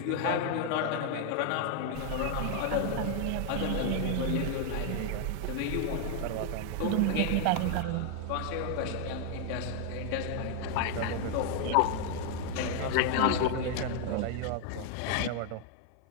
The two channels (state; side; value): different; both; correlation 0.00